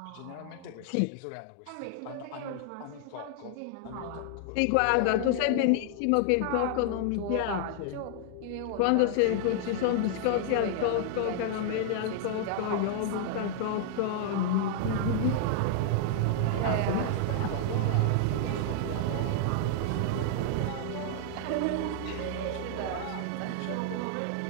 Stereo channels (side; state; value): both; different; correlation 0.00